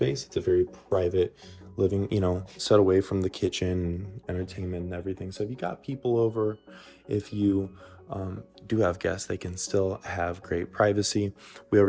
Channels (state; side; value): identical; both; correlation 1.00